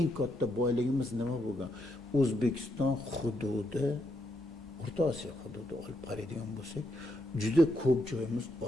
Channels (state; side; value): normal; both; correlation 0.79